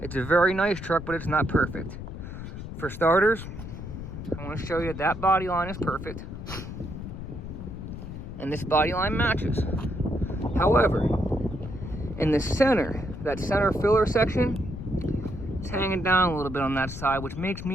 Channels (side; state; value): left; noise; rumble, 9 dB below the sound